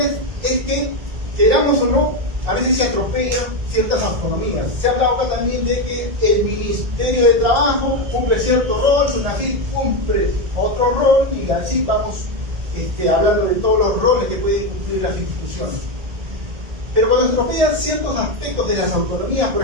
es que, queramos o no, a veces se atropellan ciertas autonomías. Se ha hablado acá también de que el Ministerio de Trabajo cumple cierto rol, SUNAFIL cumple otro rol, y así vamos hablando de todos los roles que pueden cumplir las instituciones. Pero cuando se atropellan ciertos aspectos de las autonomías, por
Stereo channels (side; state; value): left; late; 1.8 ms